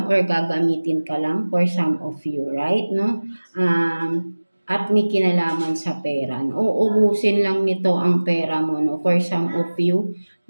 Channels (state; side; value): inverted; both; correlation -1.00